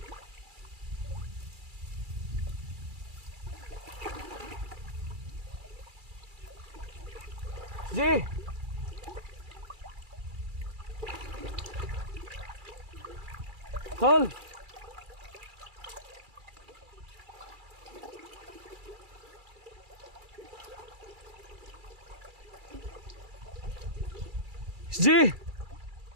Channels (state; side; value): late; left; 2.3 ms